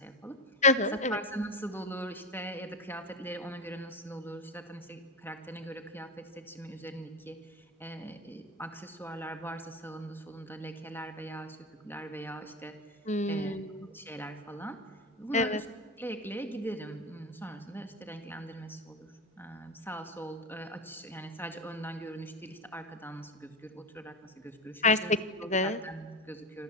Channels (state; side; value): normal; both; correlation 0.19